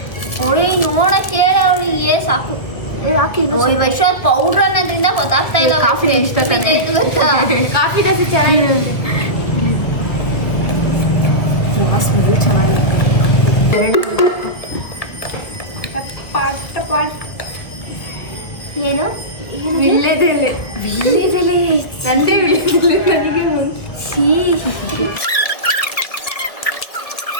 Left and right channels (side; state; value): right; late; 1.5 ms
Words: ಓಯ್ ನೋಡಕ್ಕೆ ಅವಳಿಗೆ ಸಾಕು. ಯಾಕೆ ಓಯ್ ವೈಶಾಲ್ ಪೌಡರ್ ಅನ್ನೋದ್ರಿಂದ ಗೊತ್ತಾಗ್ತಾ ಇಲ್ಲ. ಕಾಫಿ ಇಷ್ಟ ತಾನೆ. ಕಾಫಿ ದೋಸೆ ಚೆನ್ನಾಗಿರುತ್ತೆ. ಸ್ಮೆಲ್ ಚೆನ್ನಾಗಿದೆ. ಏನು ವಿಳ್ಯದೆಲೆ. ವಿಳ್ಯದೆಲೆ ನಂದೇ ವಿಳ್ಯದೆಲೆ ನನಗೆ ಒಂದು.